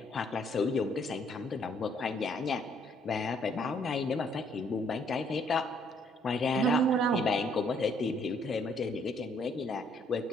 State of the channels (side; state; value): both; normal; correlation 0.66